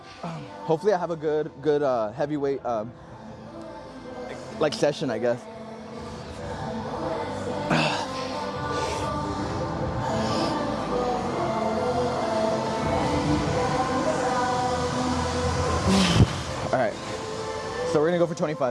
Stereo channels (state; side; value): identical; both; correlation 1.00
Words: Hopefully I have a good heavyweight like session, I guess. All right, so we're gonna go for